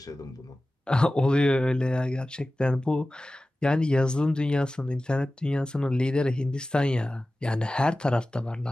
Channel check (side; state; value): both; normal; correlation 0.96